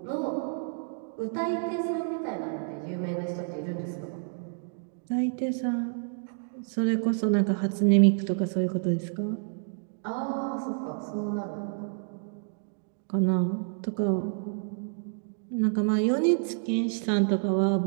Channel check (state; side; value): silent; left; digital silence